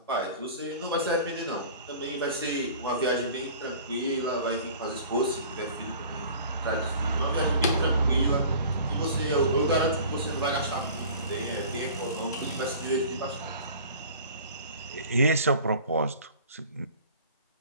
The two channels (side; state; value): both; inverted; correlation -0.44